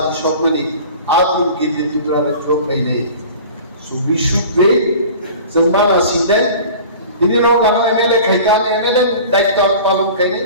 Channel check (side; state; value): both; inverted; correlation -0.41